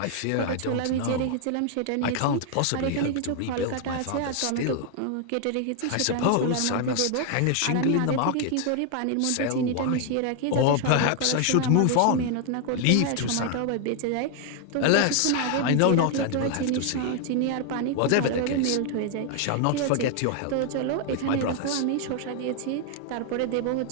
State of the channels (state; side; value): different; both; correlation 0.00